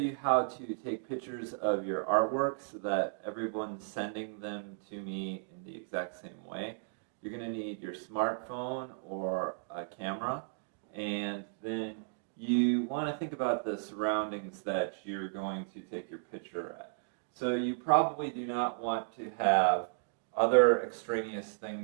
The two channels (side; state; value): left; silent; digital silence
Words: how to take pictures of your artwork so that everyone's sending them to me in the exact same way. You're going to need your smartphone or a camera, and then you want to think about the surroundings that you're going to take your picture at. So you probably do not want to have other extraneous